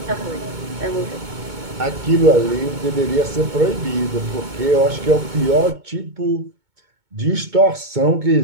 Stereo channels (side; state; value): left; late; 2.2 ms